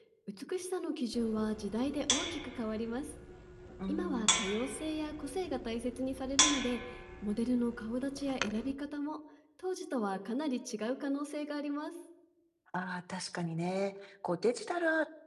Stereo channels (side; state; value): both; identical; correlation 1.00